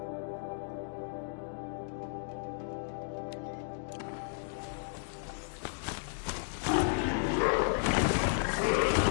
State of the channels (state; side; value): silent; right; digital silence